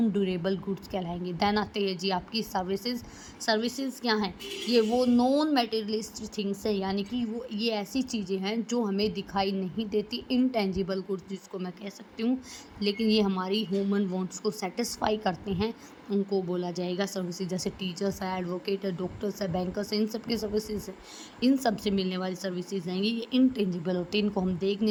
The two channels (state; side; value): identical; both; correlation 1.00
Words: ड्यूरेबल गुड्स कहलाएंगे। देन आते हैं जी आपकी सर्विसेज। सर्विसेज क्या हैं, ये वो नॉन मटेरियलिस्टिक थिंग्स है, यानी कि वो ये ऐसी चीज़ें हैं जो हमें दिखाई नहीं देती, इनटेंजिबल गुड्स जिसको मैं कह सकती हूँ, लेकिन ये हमारी ह्यूमन वांट्स को सेटिस्फाई करते हैं, उनको बोला जाएगा सर्विसेज। जैसे टीचर्स है, एडवोकेट है, डॉक्टर्स है, बैंकर्स है, इन सब की सर्विसेज है, इन सब से मिलने वाली सर्विसेज हैं, ये इनटेंजिबल होते हैं, इनको हम देख